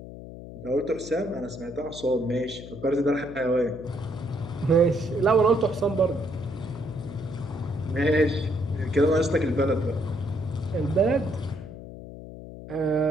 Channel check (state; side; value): noise; left; hum, 13 dB below the sound